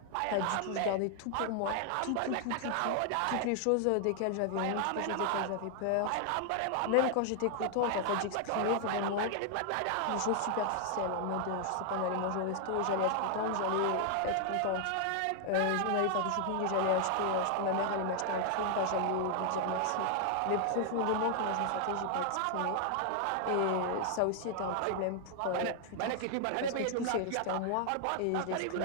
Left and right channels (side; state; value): both; different; correlation 0.00